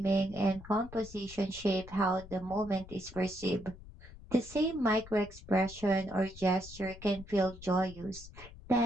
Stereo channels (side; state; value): left; noise; rumble, 17 dB below the sound